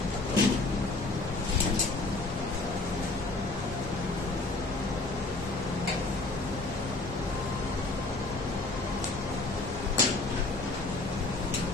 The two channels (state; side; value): quieter; right; 3.2 dB